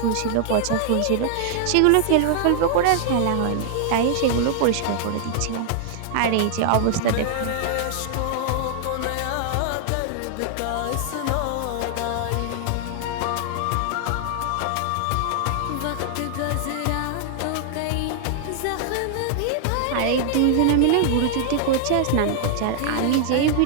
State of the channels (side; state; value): both; different; correlation -0.01